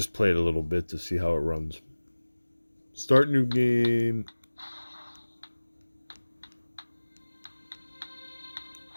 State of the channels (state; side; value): inverted; both; correlation -1.00